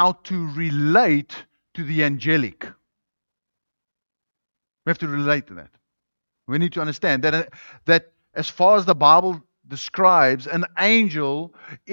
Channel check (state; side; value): inverted; both; correlation -1.00